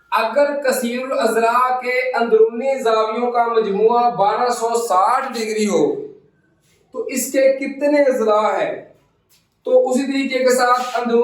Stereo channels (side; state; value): both; identical; correlation 1.00